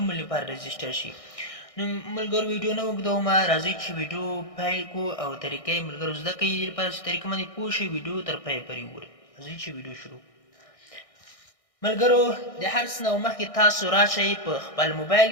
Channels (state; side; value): late; right; 1.6 ms